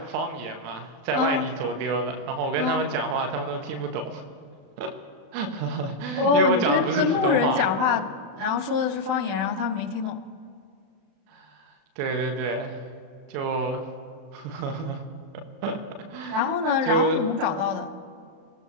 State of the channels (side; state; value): left; late; 34 ms